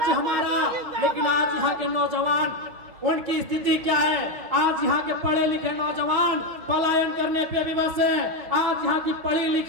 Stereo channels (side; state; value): left; late; 5.5 ms